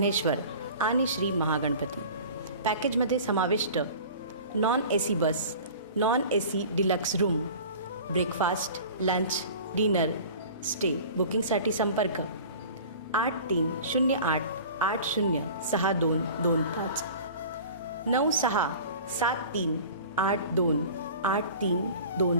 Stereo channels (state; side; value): inverted; both; correlation -0.41